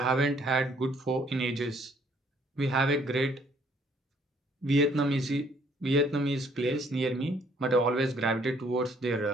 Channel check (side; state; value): both; normal; correlation 0.63